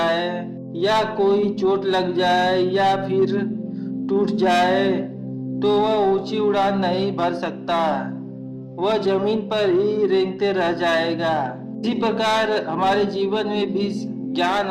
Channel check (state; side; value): identical; both; correlation 1.00